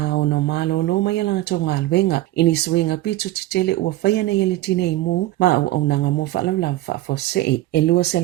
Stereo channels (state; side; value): quieter; left; 16.3 dB